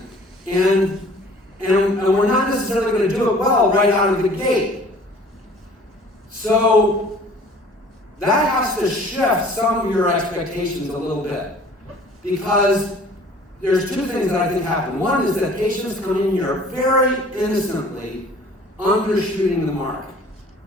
and we're not necessarily going to do it well right out of the gate. So that has to shift some of your expectations a little bit, because there's two things that I think happen. One is that patients come in here very innocently undershooting the mark.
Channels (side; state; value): both; normal; correlation 0.50